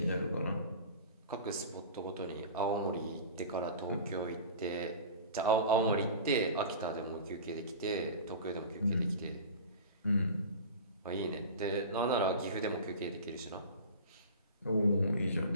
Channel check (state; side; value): inverted; both; correlation -0.35